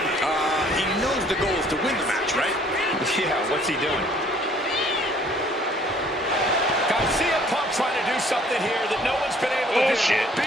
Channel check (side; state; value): both; normal; correlation 0.58